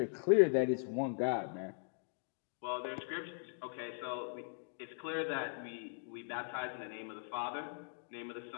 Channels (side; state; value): right; silent; digital silence